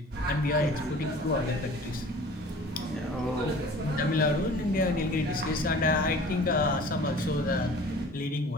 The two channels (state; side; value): normal; both; correlation 0.45